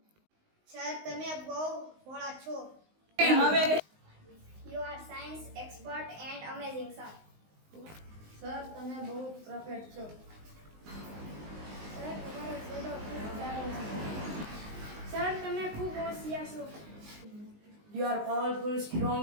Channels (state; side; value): late; left; 19 ms